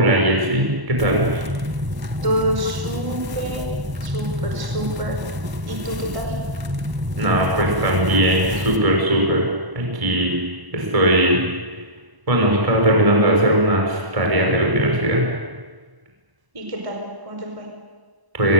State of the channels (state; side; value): late; left; 1.0 ms